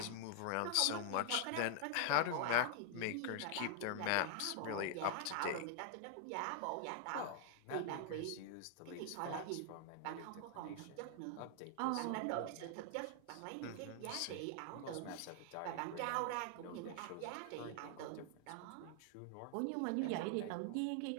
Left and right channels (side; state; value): both; different; correlation 0.00